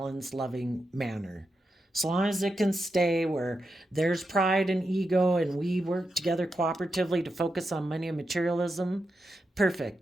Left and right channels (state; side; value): normal; both; correlation 0.87